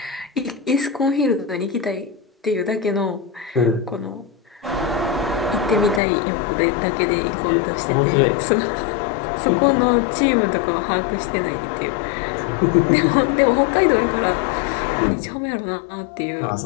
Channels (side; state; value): right; drops out; at 6.0 s